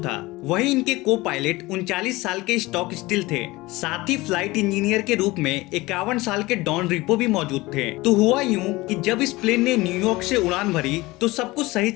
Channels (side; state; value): right; quieter; 20.7 dB